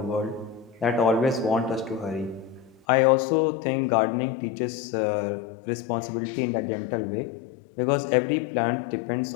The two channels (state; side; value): drops out; right; at 2.8 s